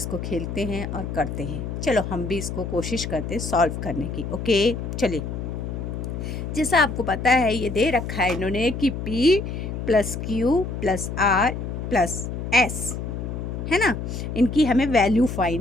खेलते हैं और करते हैं। चलो हम भी इसको कोशिश करते हैं सॉल्व करने की। ओके, चलिए। जैसा आपको पता है, ये दे रखा है इन्होंने कि P plus Q plus R plus S, है ना। इनकी हमें वैल्यू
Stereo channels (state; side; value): noise; left; hum, 5 dB below the sound